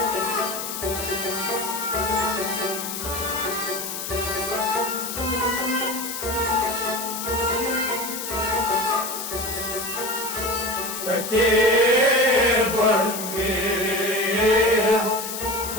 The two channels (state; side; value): noise; left; hiss, 6 dB below the sound